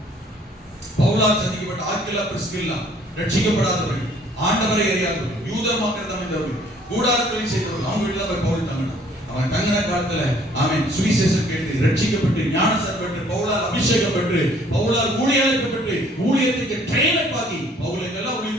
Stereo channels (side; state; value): both; normal; correlation 0.59